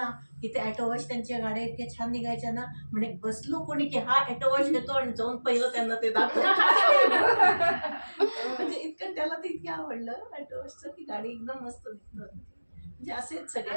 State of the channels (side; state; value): both; inverted; correlation -1.00